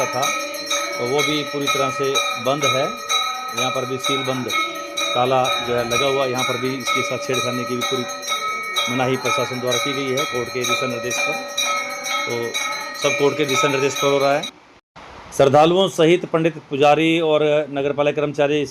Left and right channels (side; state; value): both; identical; correlation 1.00